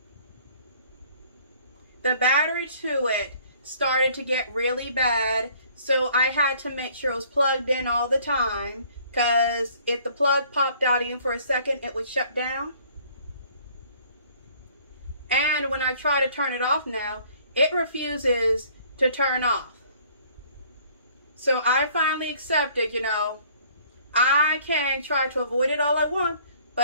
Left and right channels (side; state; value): both; inverted; correlation -0.57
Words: The battery to it started to get really bad, so I had to make sure it was plugged in all the time, because if the plug popped out even for a second, it would shut down. And when I try to turn it off now, it refuses to turn off. So I finally accepted, you know, I can try to avoid it all I want,